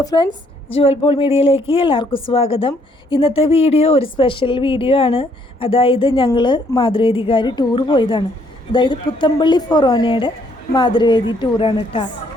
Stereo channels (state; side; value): normal; both; correlation 0.67